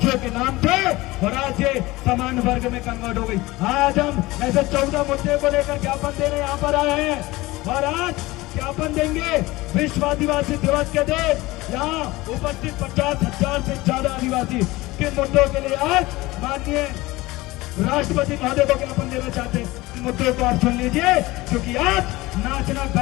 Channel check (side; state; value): right; quieter; 20.1 dB